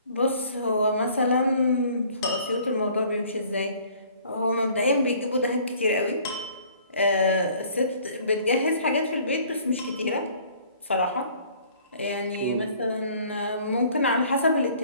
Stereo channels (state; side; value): inverted; both; correlation -0.55